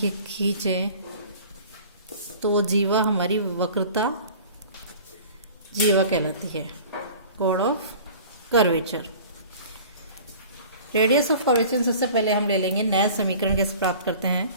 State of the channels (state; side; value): inverted; both; correlation -0.44